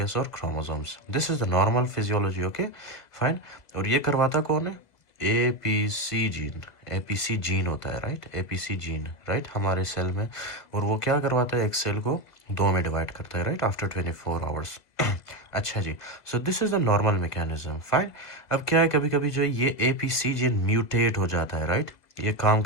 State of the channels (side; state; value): right; late; 2.0 ms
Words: और chromosomes. This is the normal physiology. Okay, fine. और ये करवाता कौन है? APC gene. एपीसी जीन होता है, राइट. एपीसी जीन, राइट, हमारे सेल में. और वो क्या करवाता है? एक सेल को दो में डिवाइड करता है, राइट, आफ्टर 24 आवर्स. अच्छा जी, so this is the normal mechanism, fine. अब क्या है, कभी कभी जो ये एपीसी जीन म्यूटेट हो जाता है, राइट. ये काम